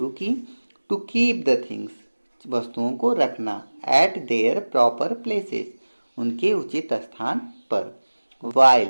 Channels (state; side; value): inverted; both; correlation -1.00